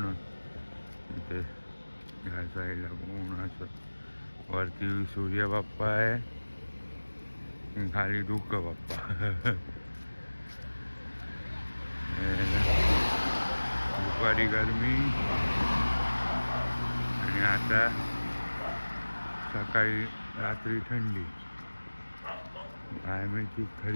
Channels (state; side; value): inverted; both; correlation -1.00